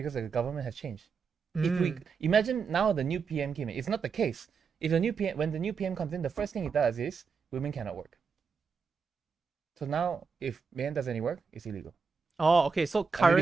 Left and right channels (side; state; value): left; quieter; 5.4 dB